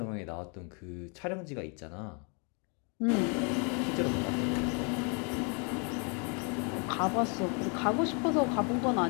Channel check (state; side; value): quieter; right; 35.4 dB